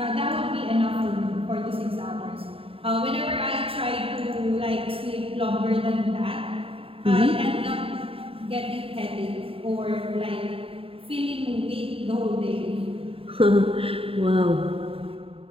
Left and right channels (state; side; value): late; left; 0.27 ms